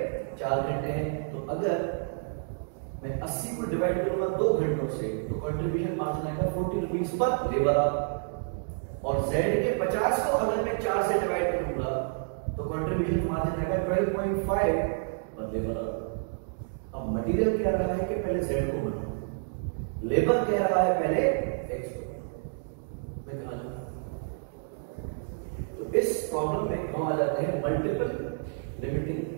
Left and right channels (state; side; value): silent; left; digital silence